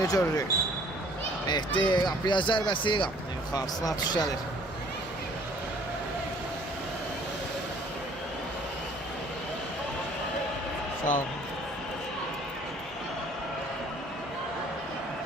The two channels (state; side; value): normal; both; correlation 0.56